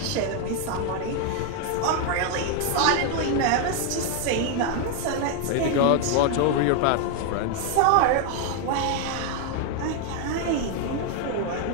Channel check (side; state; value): both; different; correlation 0.01